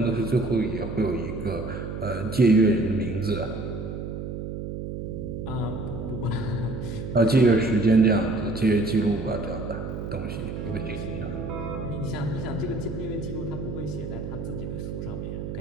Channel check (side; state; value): right; noise; hum, 6 dB below the sound